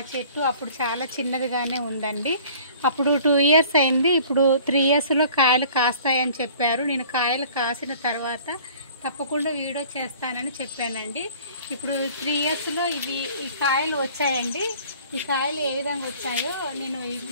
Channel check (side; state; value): both; inverted; correlation -0.50